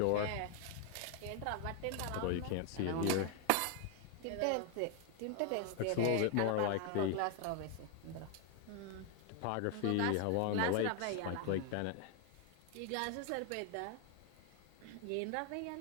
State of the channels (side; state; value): both; different; correlation 0.00